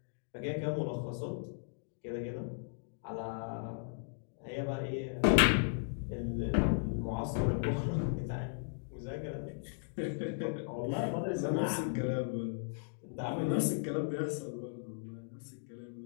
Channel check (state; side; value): silent; right; digital silence